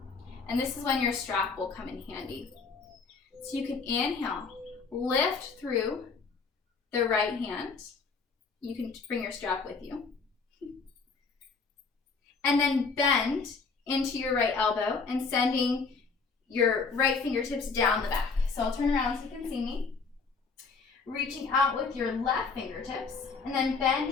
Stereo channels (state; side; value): quieter; right; 4.7 dB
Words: And this is when your strap will come in handy. So you can inhale, lift through the right hand. You can bring your strap with you. And then bend into your right elbow and sending your right fingertips down the back. So I'll turn around so you can see me. Reaching out with your left fingertips and then